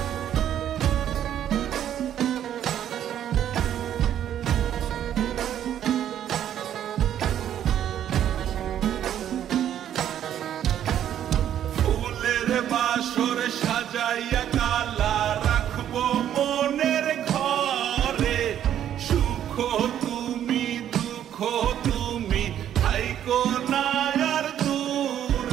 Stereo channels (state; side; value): quieter; left; 10.5 dB